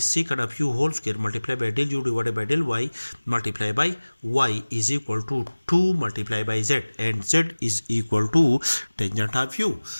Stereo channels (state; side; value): inverted; both; correlation -1.00